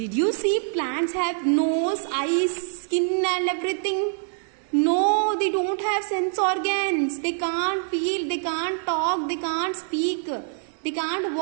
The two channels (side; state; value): left; silent; digital silence